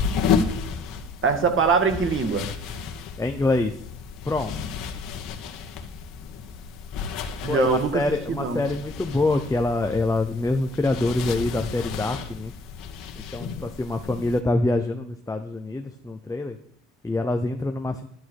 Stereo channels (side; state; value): both; normal; correlation 0.60